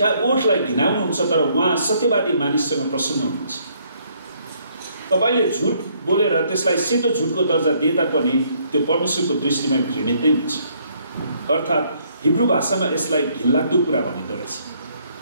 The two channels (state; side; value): inverted; both; correlation -0.68